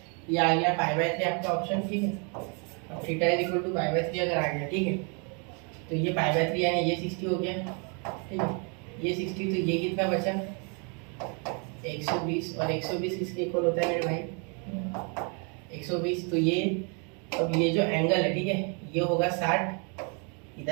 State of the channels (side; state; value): left; quieter; 36.2 dB